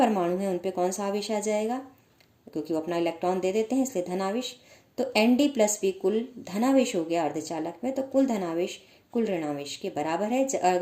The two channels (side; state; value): both; identical; correlation 1.00